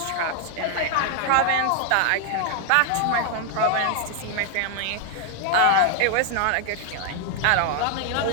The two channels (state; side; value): different; both; correlation 0.00